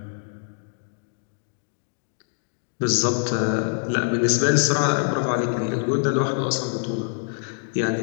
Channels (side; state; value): right; silent; digital silence